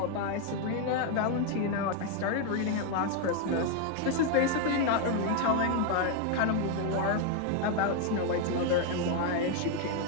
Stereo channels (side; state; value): both; different; correlation 0.01